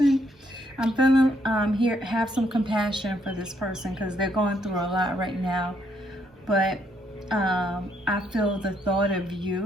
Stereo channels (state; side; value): normal; both; correlation 0.73